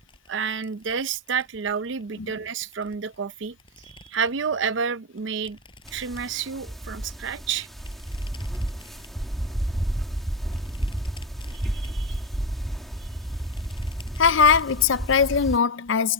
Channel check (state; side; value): normal; both; correlation 0.09